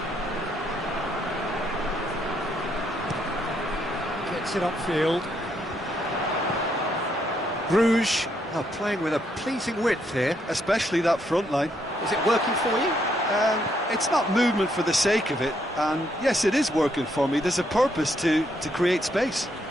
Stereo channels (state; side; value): normal; both; correlation 0.74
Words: Gets it upfield. Bruges are playing with a pleasing width here. Especially that front line. Is it working for you? It's not movement for the sake of it, and yes, it is working for me. There's a purpose to create space.